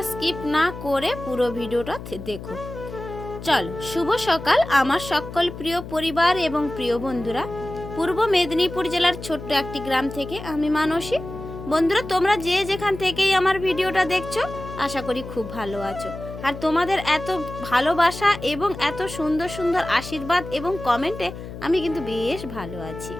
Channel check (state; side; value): noise; left; hum, 11 dB below the sound